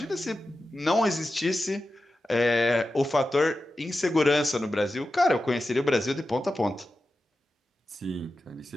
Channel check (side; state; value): both; normal; correlation 0.92